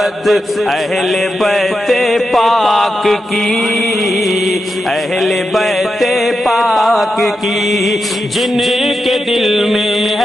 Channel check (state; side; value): normal; both; correlation 0.88